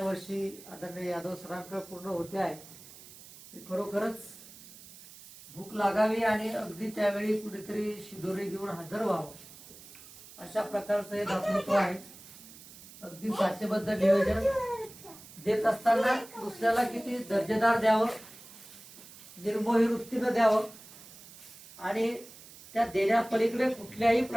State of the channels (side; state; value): right; noise; hiss, 18 dB below the sound